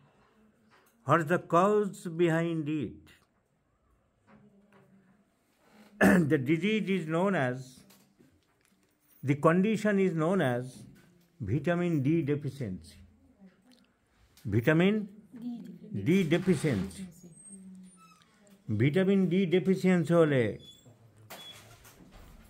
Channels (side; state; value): both; identical; correlation 1.00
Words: What is the cause behind it? The disease is known as, the condition is known as vitamin D deficiency. Vitamin D deficiency. Vitamin D deficiency হলে